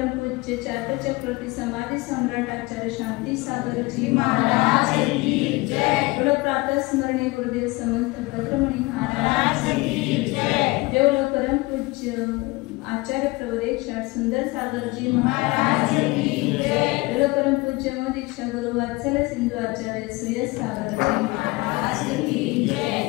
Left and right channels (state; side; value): quieter; right; 23.2 dB